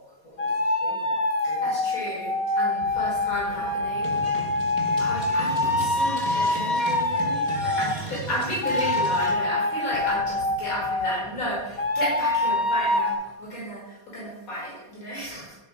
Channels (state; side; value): late; right; 4.2 ms